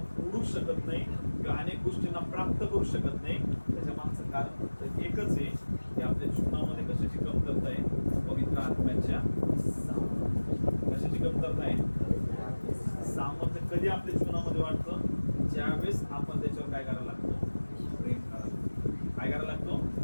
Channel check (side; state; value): both; inverted; correlation -1.00